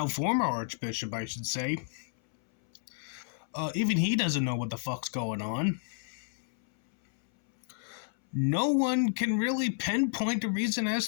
former archbishop, I should say, even he doesn't know what the fuck's going on. No one can really pinpoint a reason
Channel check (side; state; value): right; silent; 57 dB below the other